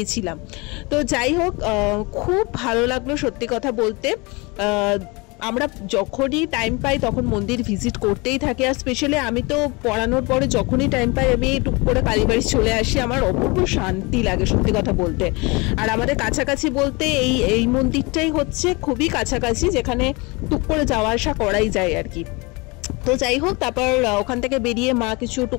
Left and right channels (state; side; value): quieter; right; 26.9 dB